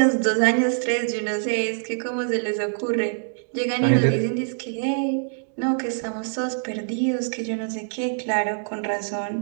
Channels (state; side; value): silent; left; digital silence